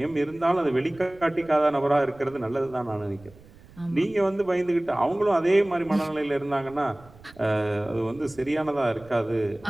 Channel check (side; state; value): right; noise; rumble, 24 dB below the sound